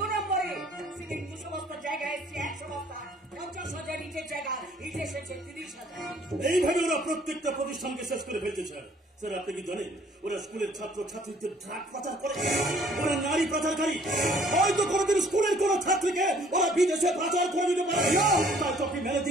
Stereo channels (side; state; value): both; normal; correlation 0.58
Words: নম্বরে। সিমেন্ট 200 বস্তা জায়গায় এসছে 100 বস্তা, 50,000 ইটের জায়গা ইট এসেছে 30,000। এইভাবে ওরা প্রত্যেকটা প্রতিষ্ঠানকে শেষ করে ফেলছে স্যার। স্যার আপনি কি জানেন ওরা স্কুলের ছাত্র ছাত্রীদের ড্রাগ পাচার করে, ওরা নারী পাচারকারী। হয়তো কোনোদিন স্কুলের কোন ছাত্রীকে ওরা বিদেশে পাচার করে দিতে পারে। তাই তো আপনি